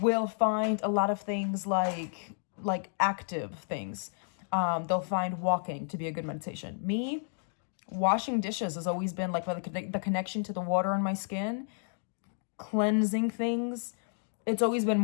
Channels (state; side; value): silent; right; digital silence